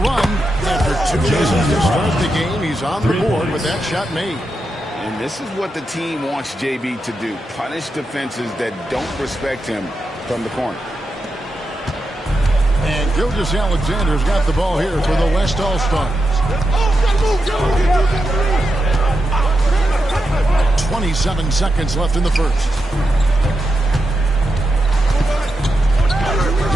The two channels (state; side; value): normal; both; correlation 0.87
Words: After 2 minutes to start the game, he's on the board with that shot made. And this is what the team wants JB to do. Punish defenses that don't respect him from the corner. And Gilgeous-Alexander's got the ball here for the West All-Stars. 27 seconds left in the first.